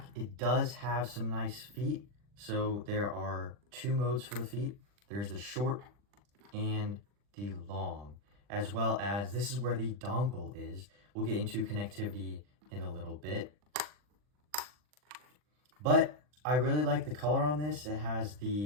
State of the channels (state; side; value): late; left; 40 ms